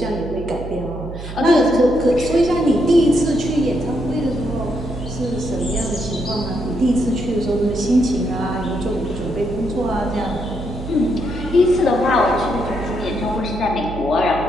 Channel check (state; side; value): noise; right; hum, 10 dB below the sound